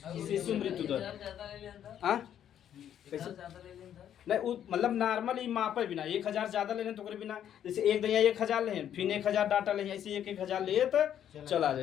शिशु मृत्यु दर। हाँ नहीं मतलब नॉर्मल ही मापे बिना 1000 ज्यादा ले तो बिना, जैसे एक दैया 1000 ले फिर 1000 डाटा ले, ऐसे 1000 ले तो चला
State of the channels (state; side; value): quieter; right; 10.0 dB